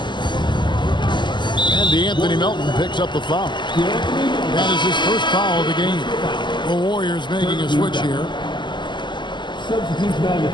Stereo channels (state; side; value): late; right; 0.22 ms